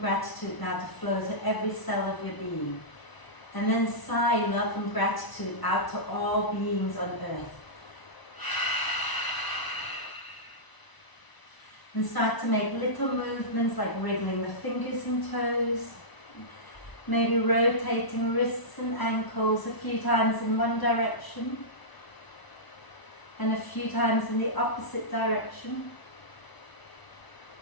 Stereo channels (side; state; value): right; late; 1.0 ms